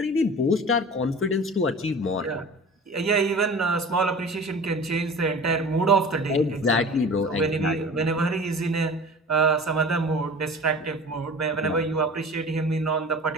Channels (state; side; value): normal; both; correlation 0.39